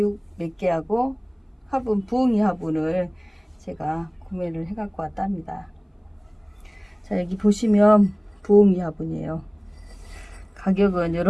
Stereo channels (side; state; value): both; identical; correlation 1.00